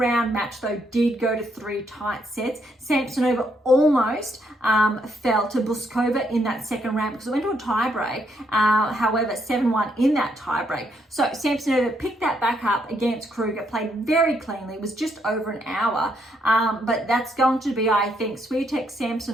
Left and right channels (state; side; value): normal; both; correlation 0.74